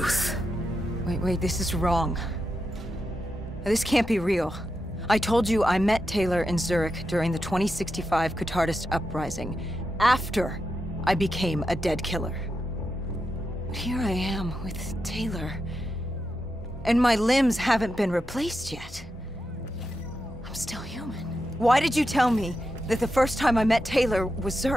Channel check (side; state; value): both; normal; correlation 0.87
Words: Wait, this is wrong. This can't be real. I told you I met Taylor in Zurich during the 2065 Catardist Uprising, after I became a dead killer. But here I am with Taylor, and my limbs haven't been replaced yet. I'm still human. Why did you tell me that the first time I met Taylor was